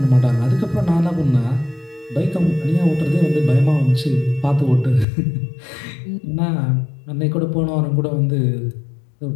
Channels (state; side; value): drops out; right; at 5.1 s